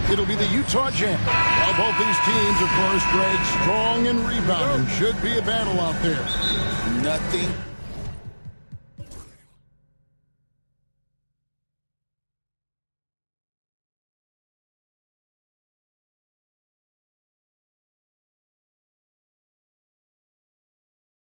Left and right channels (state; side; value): inverted; both; correlation -1.00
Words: it'll be the Utah Jazz. While both these teams, of course, Greg, strong and rebounding. Should be a battle out there. Nothing.